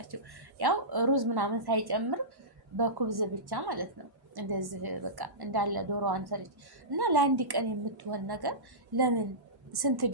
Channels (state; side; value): late; left; 1.1 ms